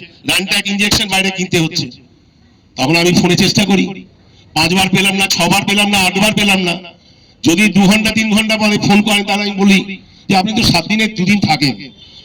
র্যানট্যাক ইনজেকশন বাইরে কিনতে হচ্ছে, তখন আমি ফোনে চেষ্টা করি, 5 বার পেলাম না, 6 বার পেলাম না, 8 বার পেলাম না। যদি 2 ঘন্টা 3 ঘন্টা পরে ফোন করেন, তাহলে আমি বলি যে আপনি তো 7 দিনে 2 দিন থাকেন,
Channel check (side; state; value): both; identical; correlation 1.00